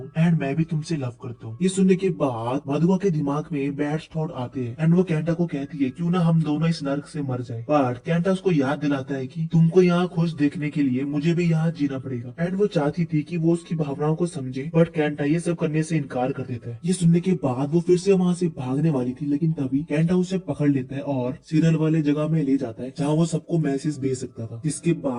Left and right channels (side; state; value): both; identical; correlation 1.00